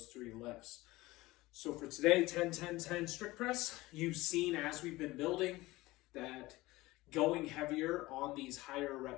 three lifts. So for today, 10, 10, 10 strict press, you've seen as we've been building that going heavier on these higher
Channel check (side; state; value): right; quieter; 19.5 dB